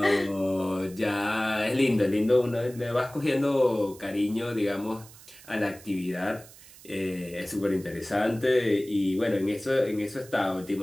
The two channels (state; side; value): noise; right; hiss, 21 dB below the sound